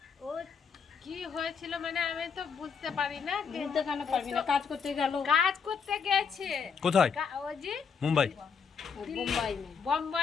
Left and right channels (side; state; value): right; quieter; 6.2 dB